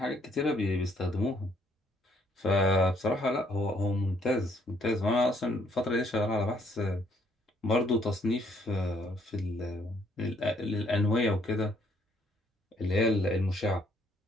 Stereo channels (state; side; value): normal; both; correlation 0.67